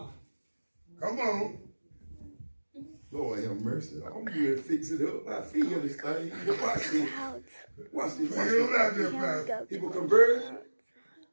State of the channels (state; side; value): inverted; both; correlation -1.00